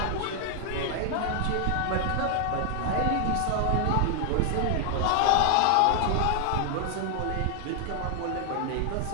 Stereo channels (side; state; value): both; different; correlation 0.00